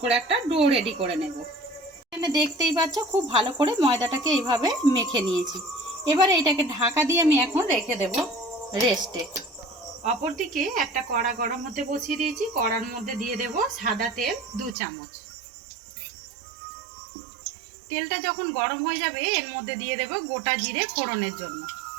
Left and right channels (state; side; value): drops out; left; at 14.8 s